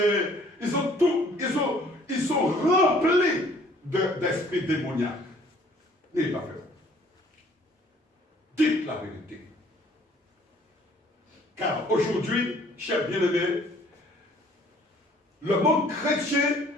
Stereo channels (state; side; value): normal; both; correlation 0.57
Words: ils sont remplis d'esprits démoniaques. N'ayez pas peur. Dites la vérité. Car aujourd'hui, chers bien-aimés, le monde chrétien